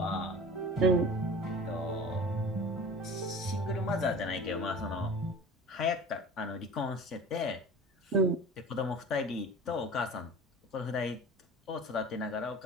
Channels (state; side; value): normal; both; correlation 0.39